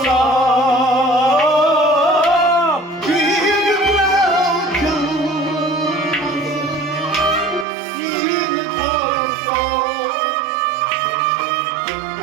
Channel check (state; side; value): drops out; left; at 7.7 s